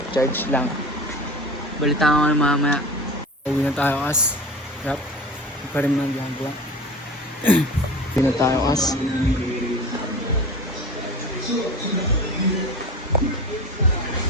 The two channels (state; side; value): normal; both; correlation 0.34